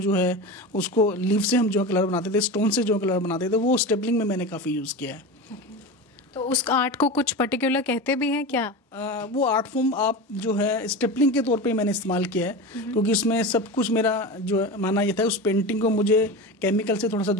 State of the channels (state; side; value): normal; both; correlation 0.26